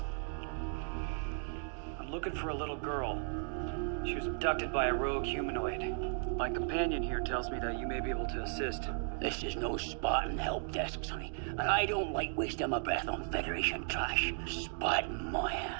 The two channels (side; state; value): left; silent; 54 dB below the other